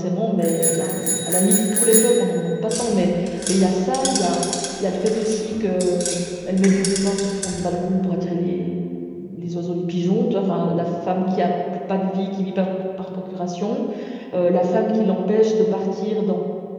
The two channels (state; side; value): identical; both; correlation 1.00